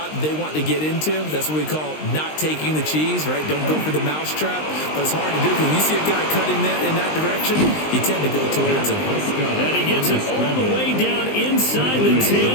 they want to get into. That's what we call not taking the cheese, right? Don't go for the mousetrap. But it's hard to do because when you see a guy cutting that in that direction, you tend to go towards him. And he gets it all the way down inside the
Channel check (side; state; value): right; late; 19 ms